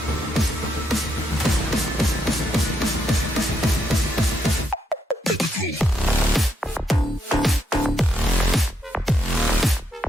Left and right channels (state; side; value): normal; both; correlation 0.78